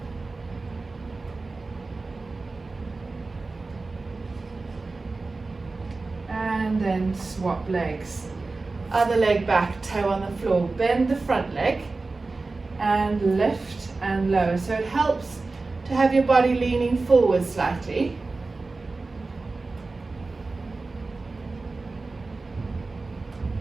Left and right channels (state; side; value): quieter; left; 3.6 dB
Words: And then swap legs. Other leg back, toe on the floor. Bend the front leg and lift and lower. So it helps to have your body leaning forward slightly.